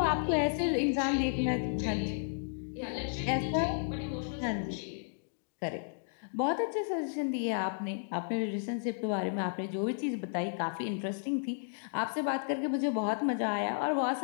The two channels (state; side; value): silent; right; digital silence